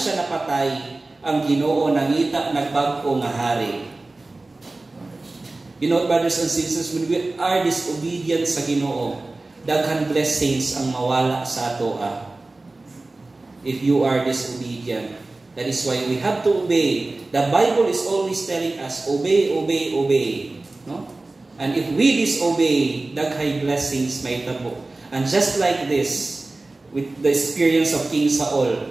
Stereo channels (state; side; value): quieter; left; 3.1 dB